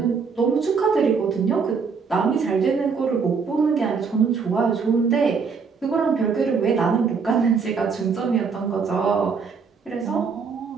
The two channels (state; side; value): quieter; left; 5.5 dB